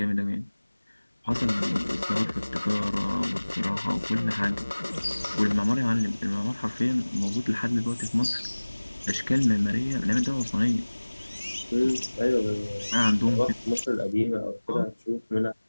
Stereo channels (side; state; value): both; inverted; correlation -1.00